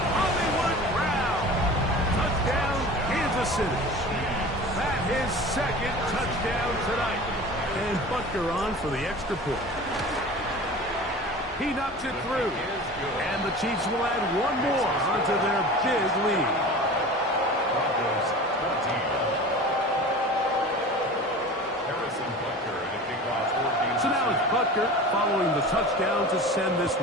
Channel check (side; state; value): both; normal; correlation 0.37